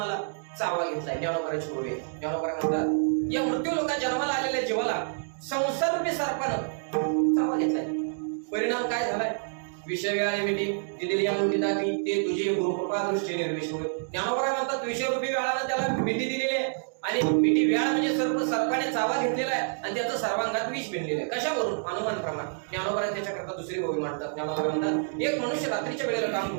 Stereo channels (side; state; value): left; silent; digital silence